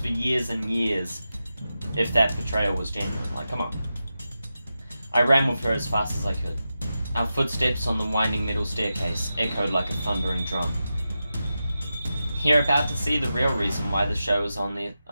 years and years if that betrayal was genuine? Like, come on. I ran with her as fast as I could. Our footsteps on the winding metal staircase echoed like a thundering drum. You're about to see the real reason why the show is on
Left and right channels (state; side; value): inverted; both; correlation -0.91